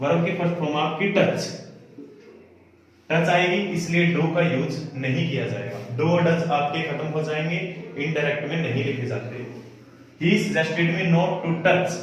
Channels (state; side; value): identical; both; correlation 1.00